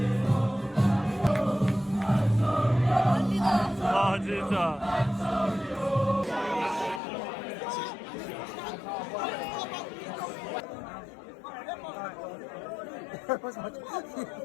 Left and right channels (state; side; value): drops out; right; at 7.0 s